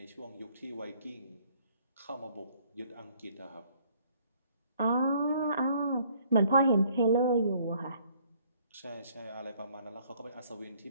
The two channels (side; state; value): both; inverted; correlation -0.62